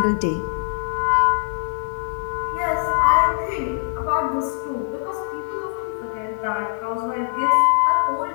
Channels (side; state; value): right; silent; digital silence